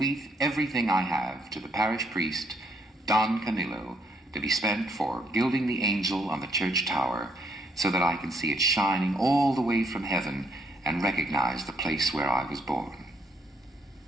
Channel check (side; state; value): both; normal; correlation 0.71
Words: everything I have to the parish priest, Don Camillo, to be spent for gilding the angel on the church tower, so that I can see it shining all the way from heaven and recognize the place where I was born."